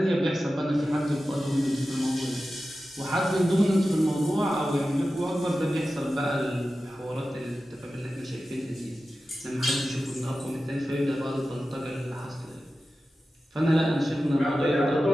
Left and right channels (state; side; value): normal; both; correlation 0.93